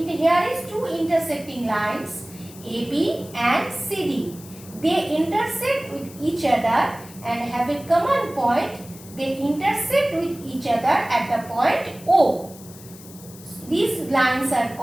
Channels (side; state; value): left; noise; hiss, 19 dB below the sound